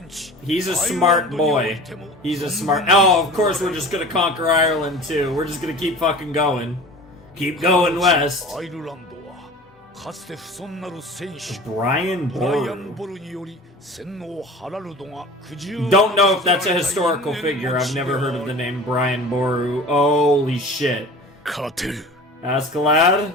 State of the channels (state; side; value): normal; both; correlation 0.39